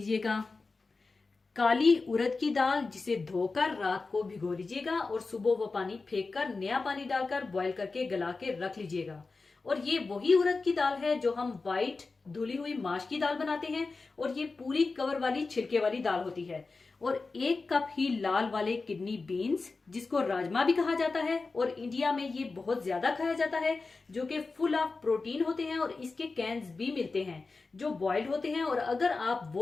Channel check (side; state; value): right; quieter; 4.0 dB